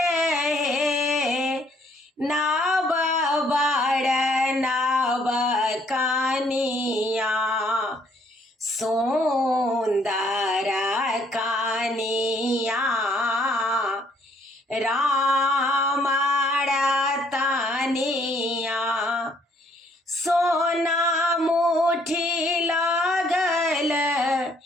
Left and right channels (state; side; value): normal; both; correlation 0.65